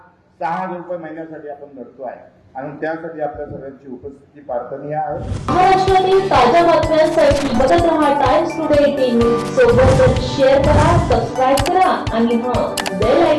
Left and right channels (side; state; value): both; identical; correlation 1.00